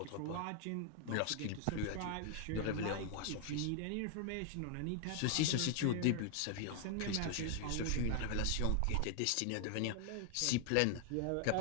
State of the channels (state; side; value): different; both; correlation 0.00